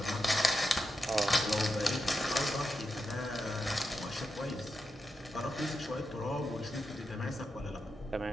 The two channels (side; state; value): both; normal; correlation 0.88